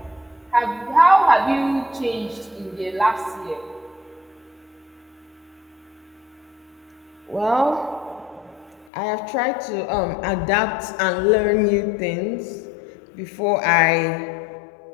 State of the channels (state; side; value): drops out; right; at 8.9 s